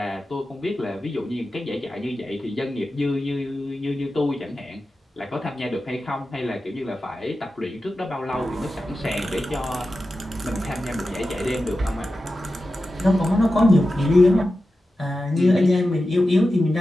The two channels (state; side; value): normal; both; correlation 0.92